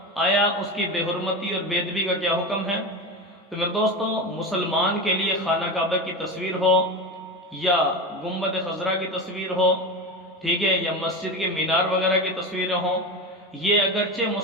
آیا اس کی بے حرمتی اور بے ادبی کا کیا حکم ہے؟ تو میرے دوستو، مسلمان کے لیے خانہ کعبہ کی تصویر ہو یا گنبد خضرا کی تصویر ہو، ٹھیک ہے، یا مسجد کے مینار وغیرہ کی تصویریں ہوں، یہ اگرچہ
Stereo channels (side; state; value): both; normal; correlation 0.22